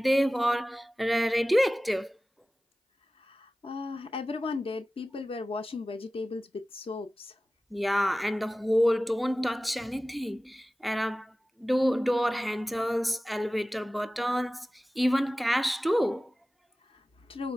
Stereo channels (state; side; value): normal; both; correlation 0.96